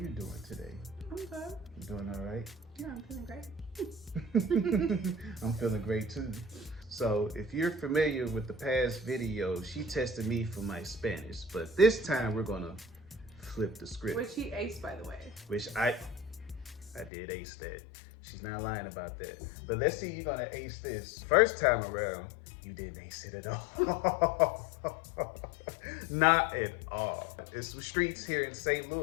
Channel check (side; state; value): right; drops out; at 17.1 s